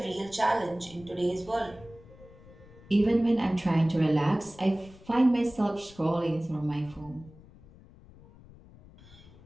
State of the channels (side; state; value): left; noise; rumble, 22 dB below the sound